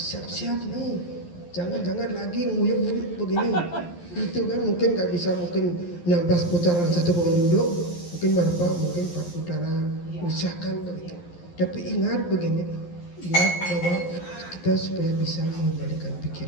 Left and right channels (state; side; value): late; right; 11 ms